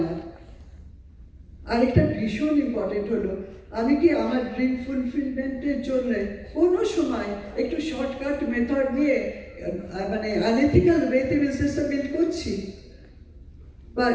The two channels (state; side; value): identical; both; correlation 1.00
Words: না। আরেকটা ভীষণ ইম্পর্টেন্ট হলো, আমি কি আমার ড্রিম ফুলফিলমেন্টের জন্য কোনো সময় একটু শর্টকাট মেথড নিয়ে মানে আনএথিক্যাল ওয়েতে বিজনেসটা বিল্ড করছি বা